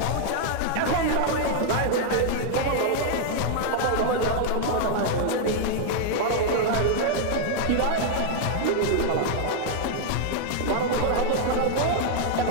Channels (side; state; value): both; different; correlation -0.01